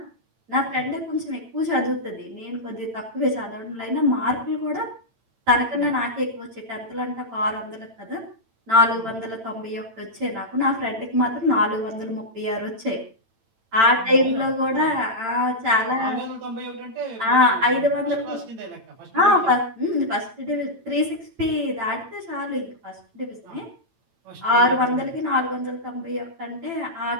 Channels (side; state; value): left; late; 8.9 ms